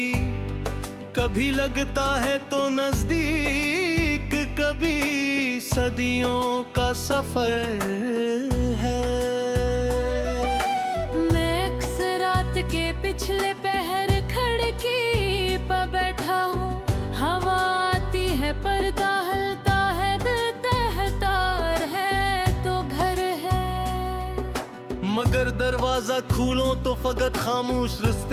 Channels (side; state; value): both; identical; correlation 1.00